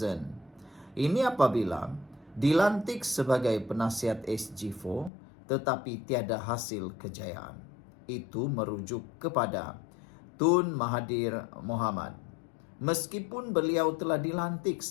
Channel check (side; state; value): right; drops out; at 5.1 s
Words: Ini apabila dilantik sebagai penasihat SG4 tetapi tiada hasil kejayaan. Itu merujuk kepada Tun Mahathir Mohamad. Meskipun beliau telah dilantik